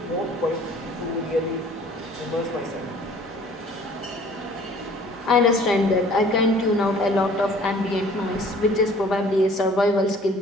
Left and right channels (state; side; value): normal; both; correlation 0.53